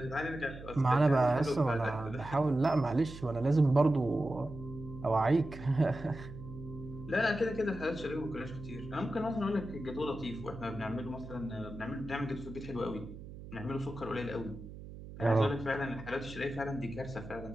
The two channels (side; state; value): right; noise; hum, 13 dB below the sound